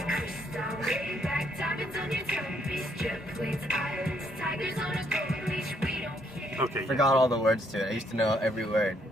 crystal, way back, diamonds on your timepiece, jet planes, islands, tigers on a golden leash. We don't care. Okay. Forgot all the words to it. I used to know every word.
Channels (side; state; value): both; normal; correlation 0.71